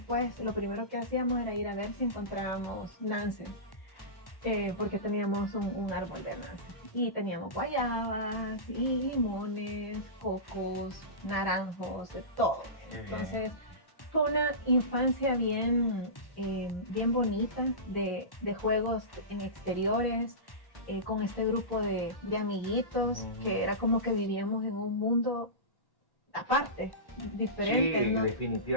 lo primero que hacíamos era ir a ver si encontrábamos nances, porque teníamos un árbol de nances. Y teníamos guayabas, y limones, cocos, naranjos, de todo. Entonces, fue una infancia bien bonita de juegos en exteriores, con este grupo de amiguitos, que era como que vivíamos en un mundo aparte, diferente. Sí, ¿no?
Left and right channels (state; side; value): late; right; 1.1 ms